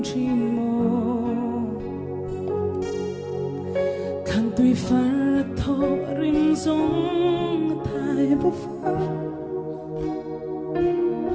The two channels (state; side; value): identical; both; correlation 1.00